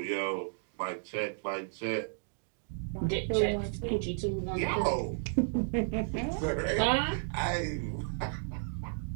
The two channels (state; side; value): silent; left; digital silence